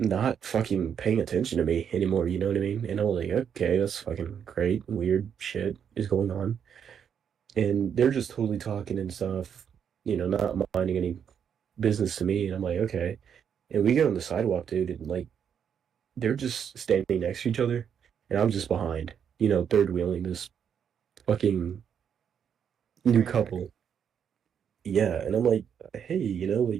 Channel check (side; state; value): left; quieter; 7.9 dB